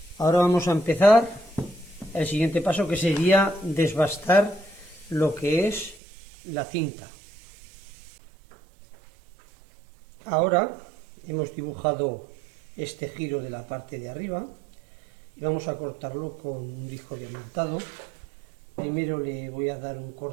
Ahora vamos a empezar el siguiente paso, que sería desbastar lo que es la cinta. Ahora hemos dibujado este giro de la parte de arriba y vamos a cortarlo con un disco diamantado. Primero le voy a dar un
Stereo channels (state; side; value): drops out; left; at 6.0 s